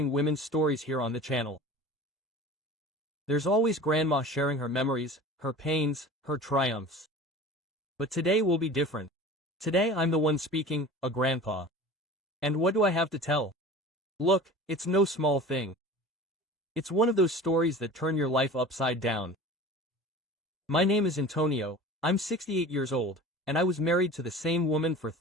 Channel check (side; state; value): both; normal; correlation 0.38